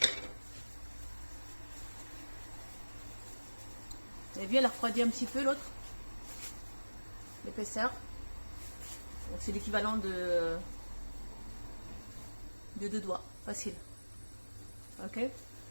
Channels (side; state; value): both; inverted; correlation -1.00